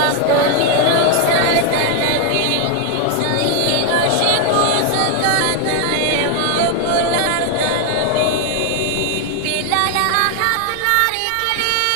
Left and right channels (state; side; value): different; both; correlation 0.00